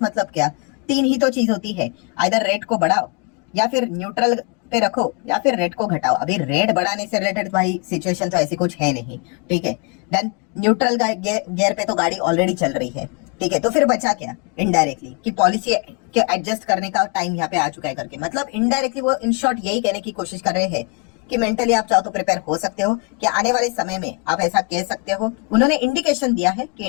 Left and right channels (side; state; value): right; quieter; 32.7 dB